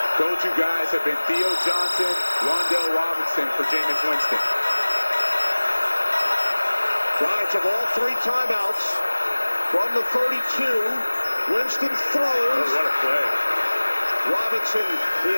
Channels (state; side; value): inverted; both; correlation -1.00